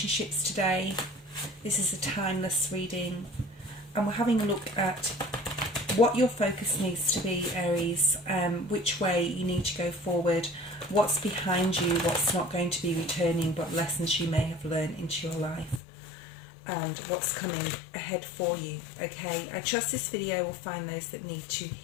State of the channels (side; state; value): right; drops out; at 15.8 s